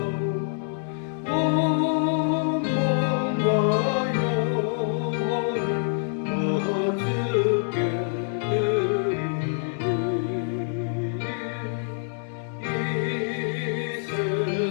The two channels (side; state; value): right; silent; digital silence